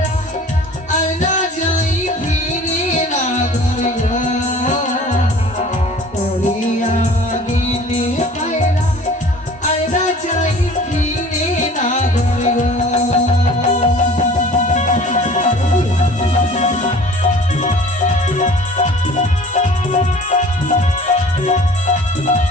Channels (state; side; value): normal; both; correlation 0.47